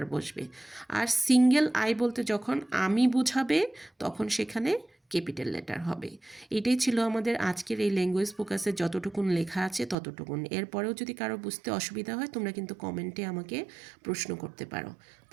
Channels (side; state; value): left; drops out; at 10.0 s